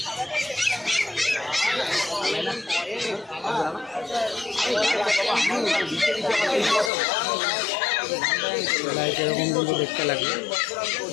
এরকম কিন্তু দেখতে লাগবে।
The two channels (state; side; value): drops out; right; at 6.9 s